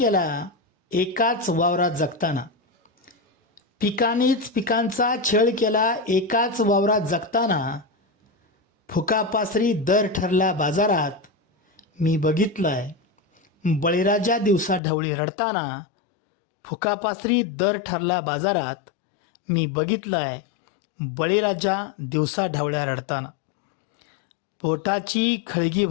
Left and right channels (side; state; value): right; drops out; at 14.8 s